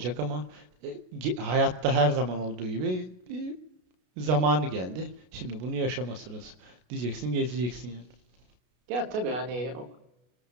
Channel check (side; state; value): left; late; 33 ms